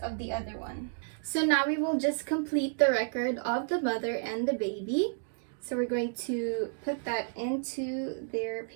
the other one. So now we will just complete the record of the mother and the baby. So we're going to put that into their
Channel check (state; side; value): silent; left; digital silence